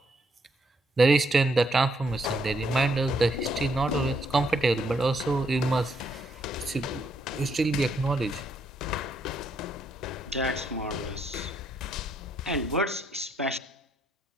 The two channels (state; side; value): normal; both; correlation 0.74